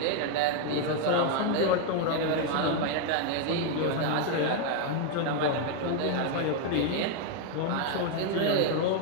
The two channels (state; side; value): different; both; correlation 0.01